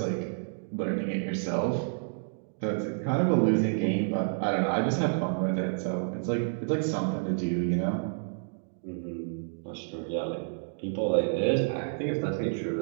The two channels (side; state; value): left; silent; digital silence